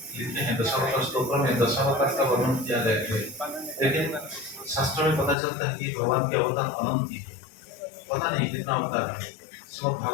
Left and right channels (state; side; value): drops out; right; at 5.4 s